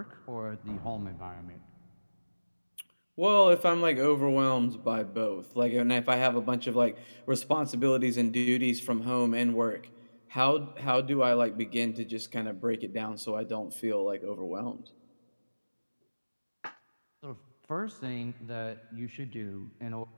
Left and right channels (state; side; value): inverted; both; correlation -1.00